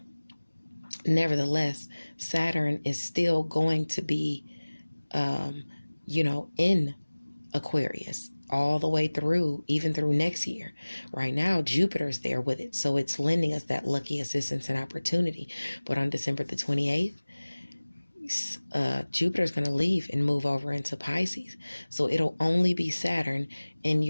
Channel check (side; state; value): both; inverted; correlation -1.00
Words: Nevertheless, Saturn is still going to be, in Aquarius all the way through, even through next year. Right now, Jupiter's there with it. So it's lending us that lucky assistance and opportunity. But on December the 28th, Jupiter's going to leave and move over into Pisces. So it'll only be Saturn in